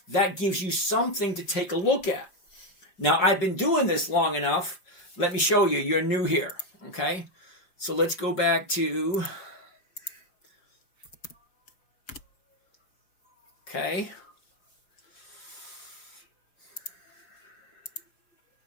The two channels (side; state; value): right; late; 5.3 ms